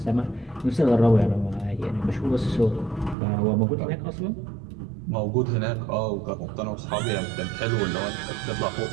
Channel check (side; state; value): left; drops out; at 3.2 s